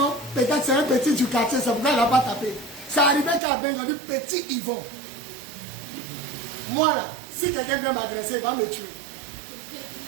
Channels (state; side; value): drops out; left; at 3.4 s